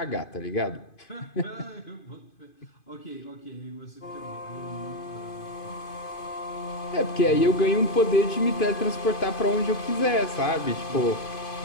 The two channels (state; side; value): late; right; 2.5 ms